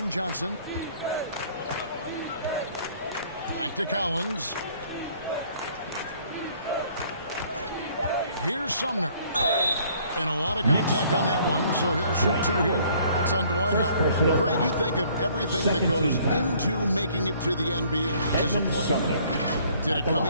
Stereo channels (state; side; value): inverted; both; correlation -0.59